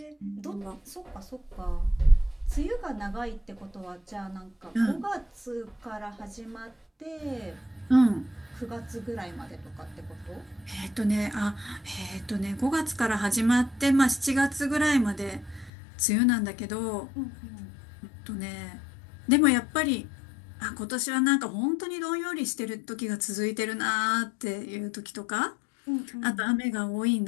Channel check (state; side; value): drops out; right; at 15.7 s